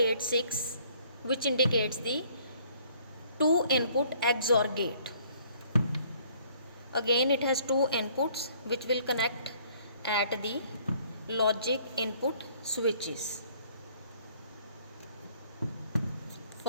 which indicates the two input XOR gate. Again it has two inputs which will connect at the logic input switches.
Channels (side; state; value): both; inverted; correlation -0.60